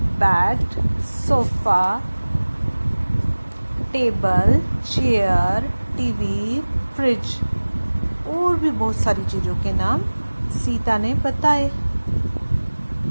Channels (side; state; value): both; inverted; correlation -1.00